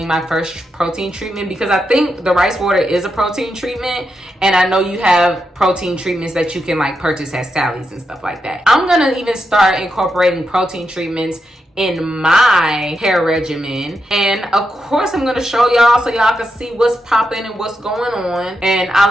my first protein treatment, because I think the rice water is a protein treatment. And I know you have protein treatments that you can like purchase at Sally's and stuff like that. I'm going to even start incorporating protein treatments in my hair regimen, and of course I'm going to show y'all so y'all can see what's popping and what's going on, and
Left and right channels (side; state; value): both; normal; correlation 0.85